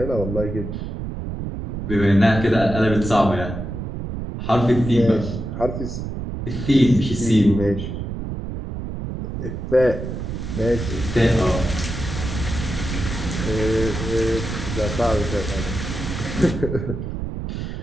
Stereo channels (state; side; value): noise; right; rumble, 5 dB below the sound